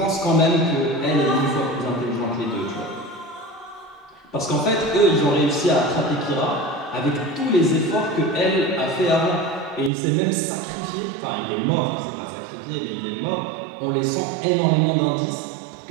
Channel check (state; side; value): drops out; left; at 9.9 s